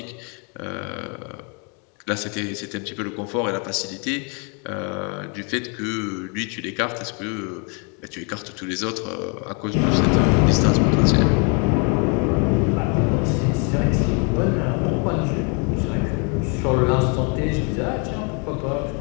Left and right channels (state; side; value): quieter; right; 35.7 dB